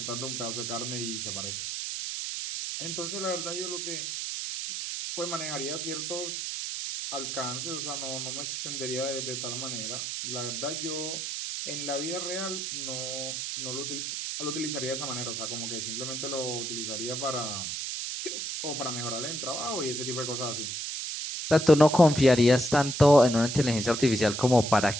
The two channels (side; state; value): right; noise; hiss, 4 dB below the sound